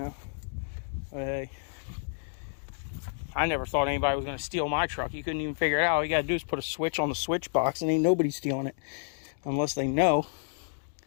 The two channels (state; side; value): silent; right; digital silence